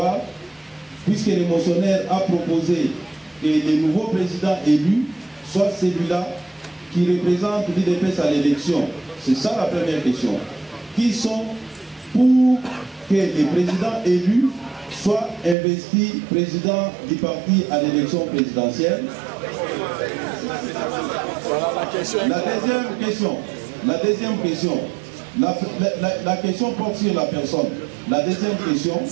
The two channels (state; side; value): drops out; left; at 15.6 s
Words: puisque le motionnaire a proposé que le nouveau président élu soit celui-là qui représentent l'UDPS à l'élection? C'est ça la première question. Qui sont pour que les présidents élus soient investis président du parti à l'élection présidentielle? La deuxième question, la question porte sur la personne. La deuxième question,